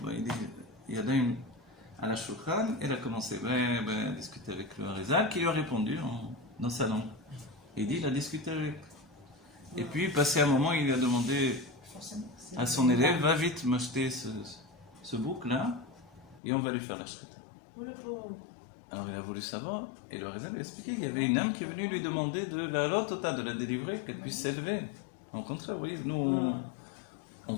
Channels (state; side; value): drops out; right; at 16.4 s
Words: il dit, il y a daim à la shulchan, et elle a commencé à discuter avec le Harizal, qui lui a répondu dans sa langue. Et il dit, il a discuté avec. Et puis, passé un moment, il lui a demandé Forcément. à son élève, va vite m'acheter ce bouc-là, et on va lui faire la shrita. Alors il a voulu savoir, et le Harizal lui a expliqué qu'il y avait une âme qui est venue lui demander de la lotota, de la délivrer, qu'elle puisse s'élever. Au contraire, oui, nous, on